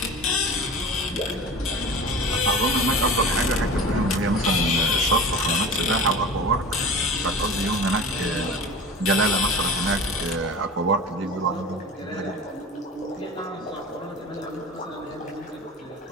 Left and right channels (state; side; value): normal; both; correlation 0.36